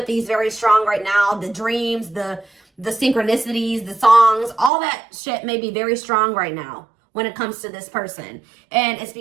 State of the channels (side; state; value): left; drops out; at 4.7 s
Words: is very strong right now. The dreams, the synchronicities, the songs, all that shit may be very strong right now when it comes to this person. And it's